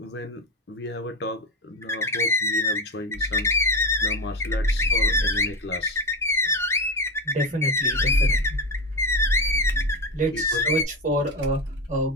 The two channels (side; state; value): both; normal; correlation 0.17